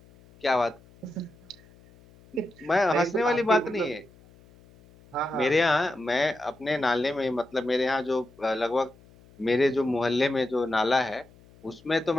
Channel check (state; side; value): noise; left; hum, 26 dB below the sound